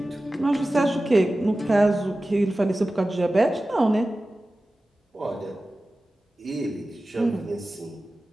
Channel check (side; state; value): both; normal; correlation 0.95